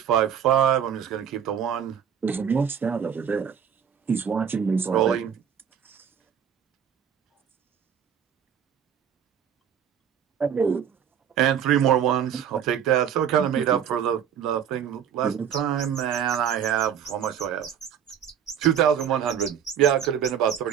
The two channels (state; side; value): quieter; left; 8.6 dB